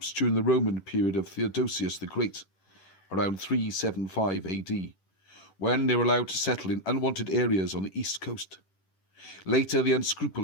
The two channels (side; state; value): right; late; 10 ms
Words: during the Roman period of Theodosius the Great, around 375 AD, when they were allowed to settle in unwanted areas on the east coast. Later, the